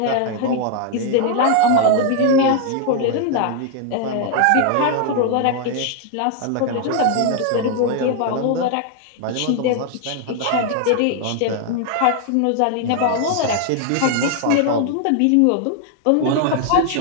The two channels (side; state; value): both; different; correlation 0.00